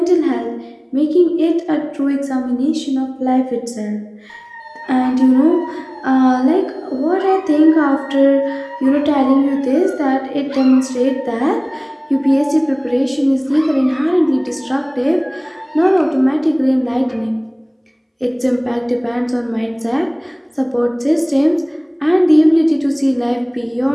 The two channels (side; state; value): both; identical; correlation 1.00